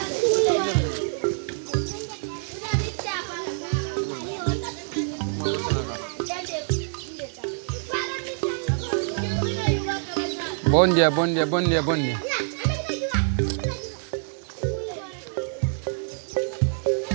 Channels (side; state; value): left; silent; digital silence